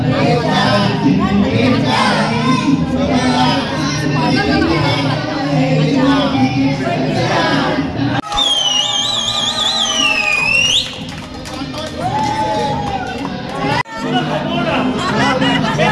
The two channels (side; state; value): both; identical; correlation 1.00